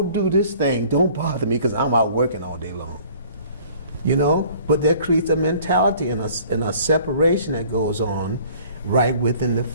do this thing. Don't bother me because I'm out working all day long. You know? But that creates a mentality and a separation that goes on right within the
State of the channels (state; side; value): inverted; both; correlation -0.53